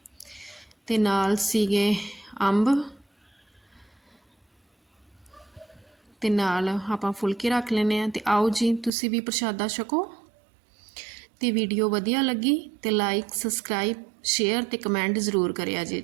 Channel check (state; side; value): drops out; left; at 8.9 s